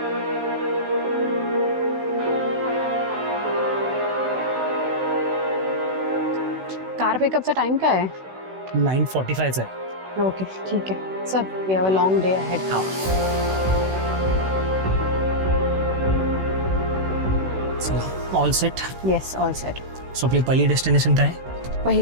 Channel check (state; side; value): late; left; 16 ms